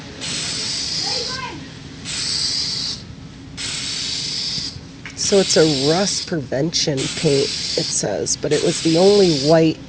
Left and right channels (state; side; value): identical; both; correlation 1.00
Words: So it's a rust prevention paint, it says, but it was the only white